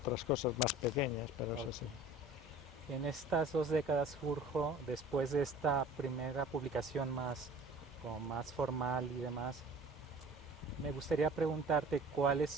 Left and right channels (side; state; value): both; normal; correlation 0.46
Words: cosas más pequeñas, pero eso sí. ok. En estas 2 décadas, Jurjo, después de esta primera publicación más, como más formal y demás, me gustaría preguntarte cuáles